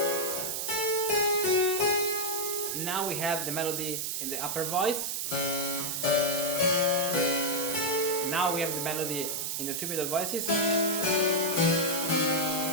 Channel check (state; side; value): noise; right; hiss, 2 dB below the sound